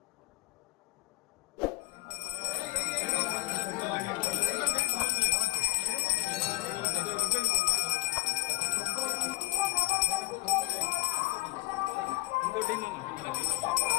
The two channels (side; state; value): right; quieter; 23.1 dB